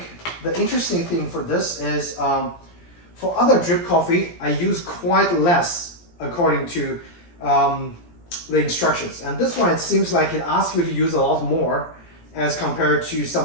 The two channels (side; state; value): right; late; 17 ms